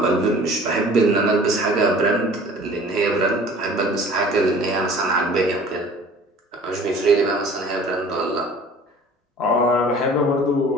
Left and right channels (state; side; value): normal; both; correlation 0.47